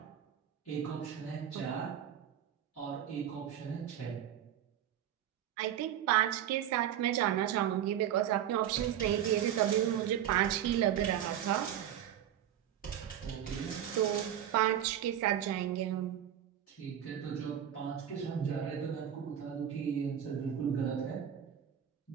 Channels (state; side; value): quieter; left; 10.3 dB